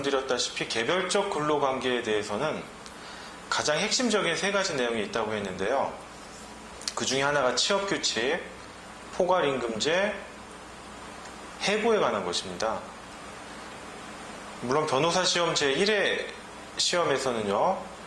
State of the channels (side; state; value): both; identical; correlation 1.00